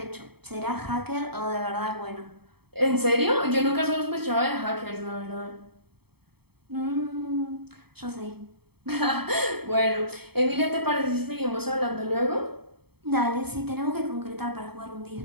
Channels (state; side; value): late; left; 0.97 ms